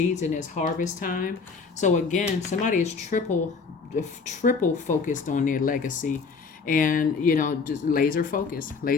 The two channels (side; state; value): right; quieter; 4.9 dB